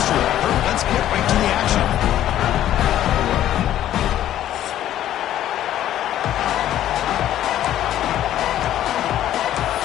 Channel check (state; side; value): quieter; right; 12.2 dB